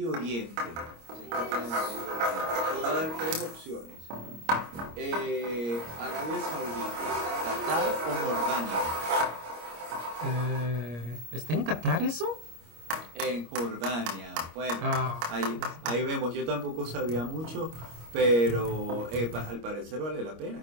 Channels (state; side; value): late; left; 25 ms